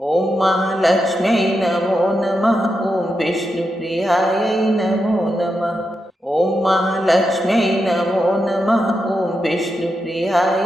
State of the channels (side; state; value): both; normal; correlation 0.86